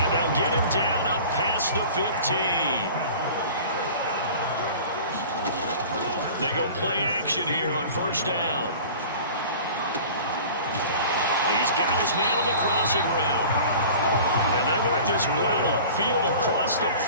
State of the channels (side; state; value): both; inverted; correlation -0.41